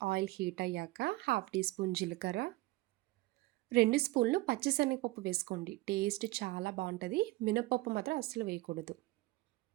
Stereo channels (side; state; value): left; quieter; 19.8 dB